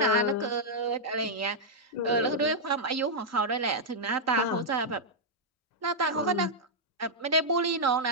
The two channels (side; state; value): both; normal; correlation -0.06